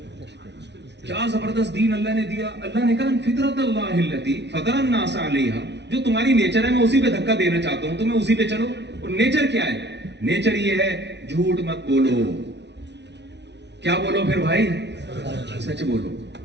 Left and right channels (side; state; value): left; late; 0.50 ms